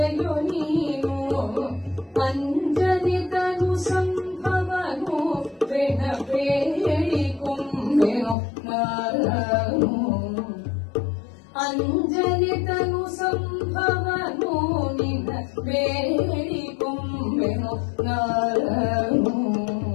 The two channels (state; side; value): drops out; right; at 8.3 s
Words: ನೀನು ಅಂಜನಿತನು ಸಂಭವನು ಬೆನ ಬೇಡಿಕೊಂಬೆನು ನಾನು ಅಂಜನಿತನು ಸಂಭವನು ನಿನ್ನ ಬೇಡಿಕೊಂಬೆನು ನಾನು